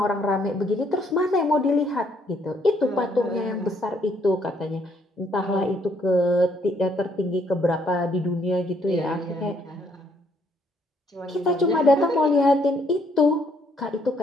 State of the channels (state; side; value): normal; both; correlation 0.69